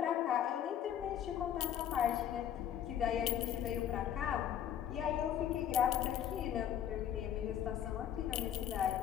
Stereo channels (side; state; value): right; quieter; 10.0 dB